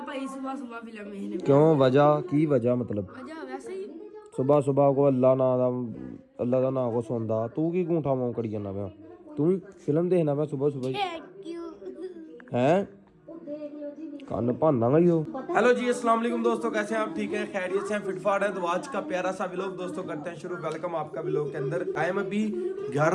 भाई सुबह सुबह फिल्म है। क्यों, वजह की वजह मतलब? वजह वैसे ही सुबह सुबह को अल्लाह का नाम को सुनदा तू की गूंठा मां करी जाना पिया? तू भी फिल्म देखना पिया सुबह सुबह हैं? कान भाना ही हो। हेलो जी अस्सलाम वालेकुम दोस्तों, कैसे हैं आप? ठीक है, खैरियत से हैं, फिटफाट है। तो आज का प्यारा सा व्लॉग दोस्तों करते हैं शुरू। वेलकम आपका व्लॉग के अंदर। टाइम अभी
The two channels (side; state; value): both; identical; correlation 1.00